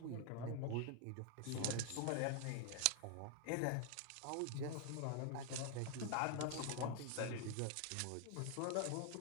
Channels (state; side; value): different; both; correlation 0.00